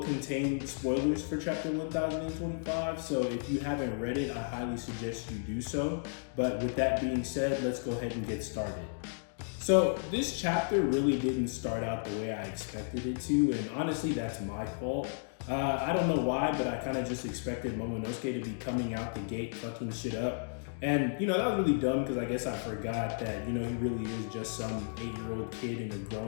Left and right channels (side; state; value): right; silent; digital silence